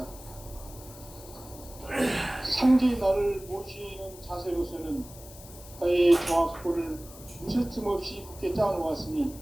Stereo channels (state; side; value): noise; left; hiss, 18 dB below the sound